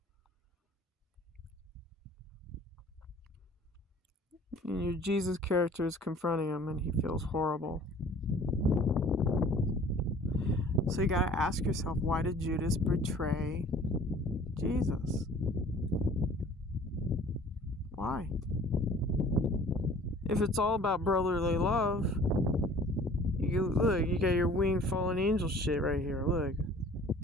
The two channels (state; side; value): normal; both; correlation 0.49